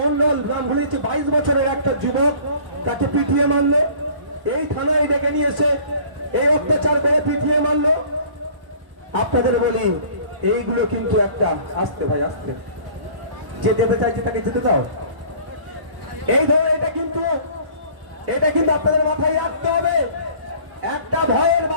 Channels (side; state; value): left; late; 1.0 ms